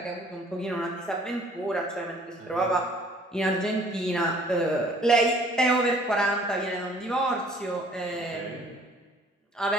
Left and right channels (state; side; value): normal; both; correlation 0.56